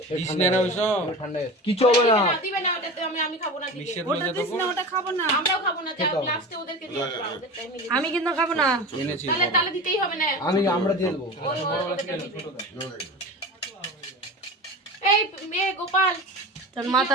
ঠান্ডা কিছু হবে না। দিবে না ওটাতে, আমি খাবো না দিবে। ওটা দিস না, ওটা খাবো না। আমরাও খাবো না, যা লাস্টে ওদেরকে দিয়ে দাও, ওদের টাইমে দিয়ে দাও। আমি কিন্তু খাবো না। তাহলে তাহলে দিতেই হবে না। আমরা দিয়ে দেবো। এই মেয়ে গোপাল, তোর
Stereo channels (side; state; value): both; normal; correlation 0.30